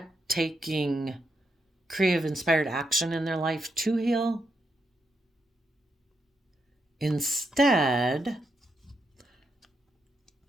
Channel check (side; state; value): both; normal; correlation 0.82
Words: taking creative, inspired action in their life to heal. Instead,